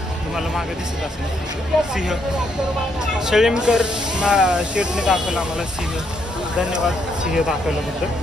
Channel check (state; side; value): normal; both; correlation 0.75